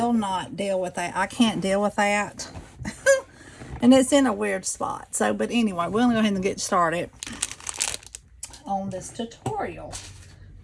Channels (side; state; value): both; identical; correlation 1.00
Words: not deal with that. I can't deal with that. And it's in a weird spot. So, but anyway, we're going to go ahead and get started on this tutorial.